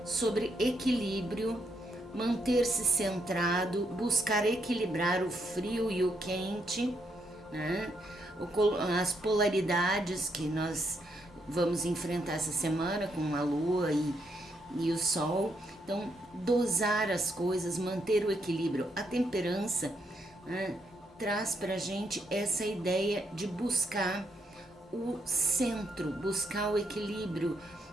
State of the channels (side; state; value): both; normal; correlation 0.76